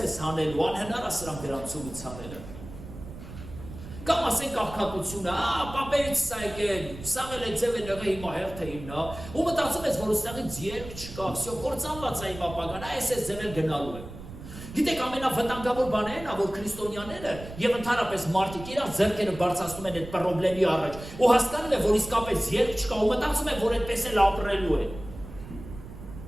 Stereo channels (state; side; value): noise; right; rumble, 13 dB below the sound